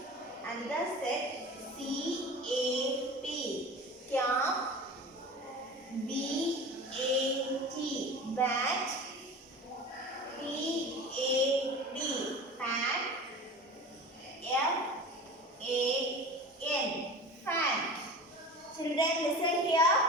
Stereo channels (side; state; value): both; normal; correlation 0.35